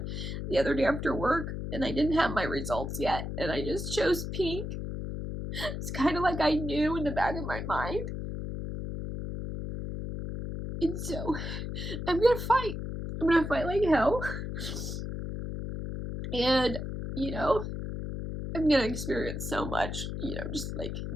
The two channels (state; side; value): noise; left; hum, 5 dB below the sound